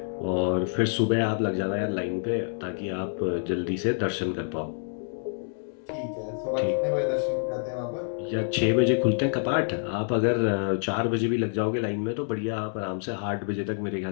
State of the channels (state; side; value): silent; right; digital silence